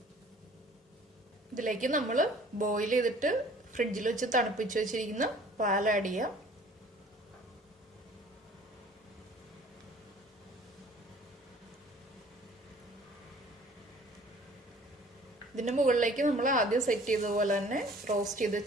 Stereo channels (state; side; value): normal; both; correlation 0.51